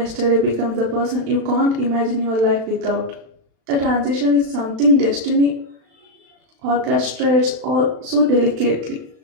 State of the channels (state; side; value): late; left; 36 ms